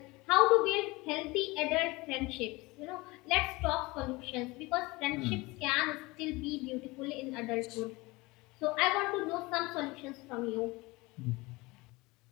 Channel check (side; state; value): right; quieter; 22.9 dB